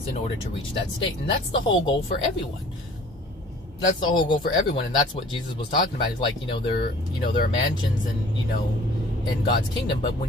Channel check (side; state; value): both; normal; correlation 0.50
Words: in order to reach that state. And that's the whole goal for everyone. That's the whole goal for everyone, and that's what Jesus was talking about. He's like, there are mansions and, in God's kingdom, but